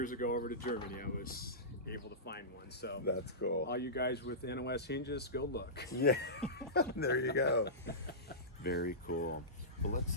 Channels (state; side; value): normal; both; correlation -0.19